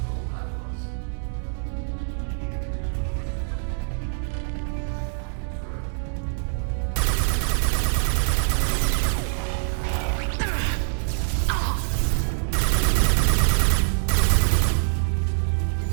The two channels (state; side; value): silent; left; digital silence